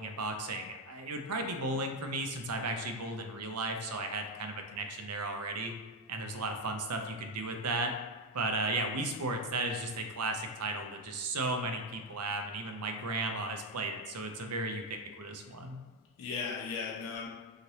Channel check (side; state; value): both; normal; correlation 0.08